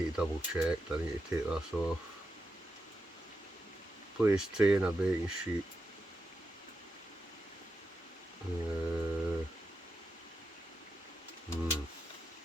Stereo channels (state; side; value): normal; both; correlation 0.86